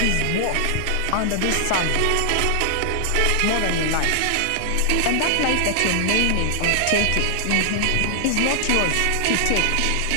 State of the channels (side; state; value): both; different; correlation 0.00